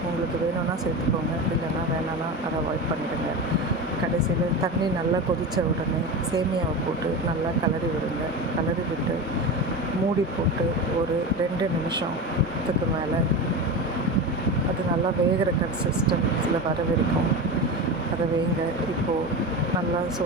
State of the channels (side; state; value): both; normal; correlation 0.24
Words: உங்களுக்கு வேணும்னா சேர்த்துக்கோங்க, இல்லைன்னா வேணான்னா அதை அவாய்ட் பண்ணிடுங்க. கடைசியில் தண்ணி நல்லா கொதித்த உடனே சேமியாவை போட்டு நல்லா கிளறி விடுங்க. கிளறி விட்டு மூடி போட்டு ஒரு 2 நிமிஷத்துக்கு மேலே அது நல்லா வேகிற கன்சிஸ்டன்சியில் வர வரைக்கும் அதை வேங்க. இப்போது நல்லா